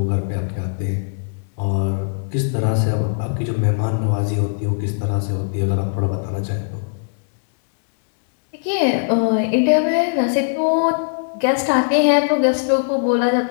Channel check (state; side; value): silent; right; 66 dB below the other